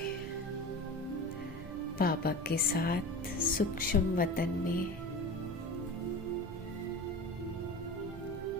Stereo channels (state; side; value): normal; both; correlation 0.33